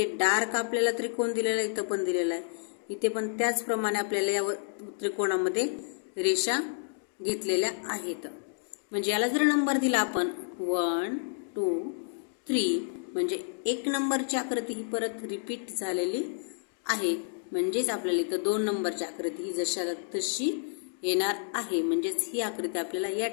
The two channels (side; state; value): right; silent; digital silence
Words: डार्क आपल्याला त्रिकोण दिलेला आहे, इथं पण दिलेला आहे, इथे पण त्याचप्रमाणे आपल्याला या त्रिकोणामध्ये रेषा घेतलेल्या आहेत. म्हणजे याला जर नंबर दिला आपण 1 2 3 म्हणजे 1 नंबरची आकृती ही परत रिपीट झालेली आहे. म्हणजेच आपल्याला इथं 2 नंबरची आकृती ही जशाला तशी येणार आहे. म्हणजेच ही आकृती आपल्याला या